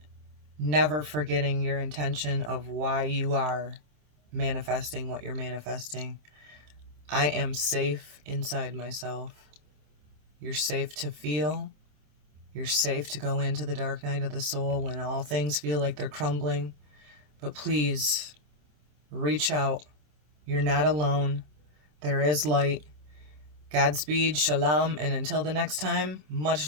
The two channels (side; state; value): left; late; 27 ms